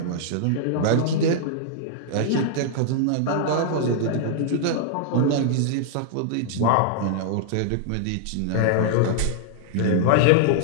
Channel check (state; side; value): different; both; correlation -0.01